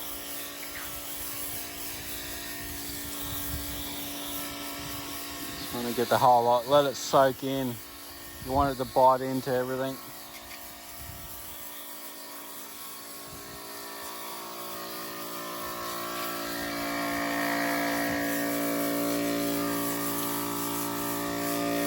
Just want to get the whole lot, let it soak in. You want it to bite into everything.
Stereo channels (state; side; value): identical; both; correlation 1.00